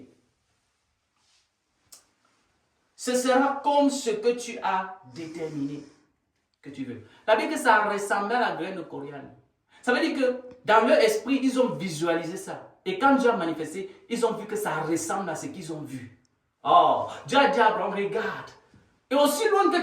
Ce sera comme ce que tu as déterminé que tu veux. La Bible dit que ça ressemble à la graine de coriandre. Ça veut dire que dans leur esprit, ils ont visualisé ça. Et quand Dieu a manifesté, ils ont vu que ça ressemble à ce qu'ils ont vu. Oh, Dieu a dit à Abraham, regarde. Et aussi loin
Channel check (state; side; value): identical; both; correlation 1.00